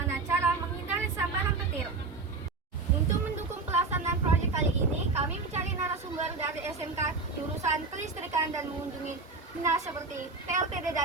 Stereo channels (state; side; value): quieter; left; 4.0 dB